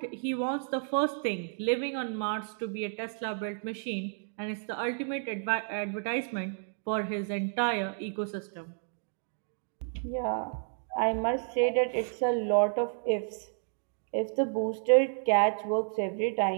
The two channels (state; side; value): silent; left; 57 dB below the other